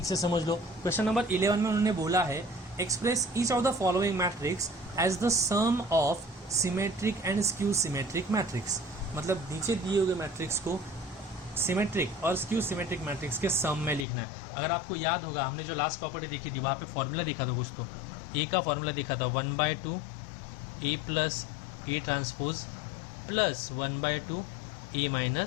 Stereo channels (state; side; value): drops out; right; at 14.1 s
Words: से समझ लो। क्वेश्चन नंबर 11 में उन्होंने बोला है express each of the following matrix as the sum of symmetric and skew symmetric matrix, मतलब नीचे दिए हुए मैट्रिक्स को सिमेट्रिक और स्क्यू सिमेट्रिक मैट्रिक्स के सम में लिखना है। अगर आपको याद होगा हमने जो लास्ट प्रॉपर्टी देखी थी वहाँ पे फॉर्मूला देखा था कुछ, तो ए का फॉर्मूला देखा था 1/2 A plus A transpose plus 1/2 A